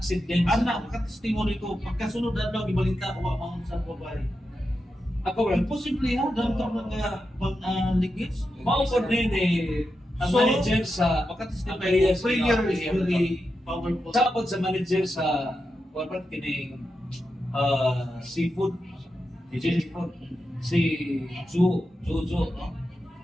Anak, makatestimony ko, pagkasunod adlaw, ibalita, wa maunsa ko ba. Ako, Brad, Imposible ha, dahil ito mga ligits. maupod din ang So, manager sa Makatestimony ko, prayer is very powerful. Sapod sa manager sa corporate kining seafood si Jojo, no?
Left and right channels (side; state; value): both; normal; correlation 0.88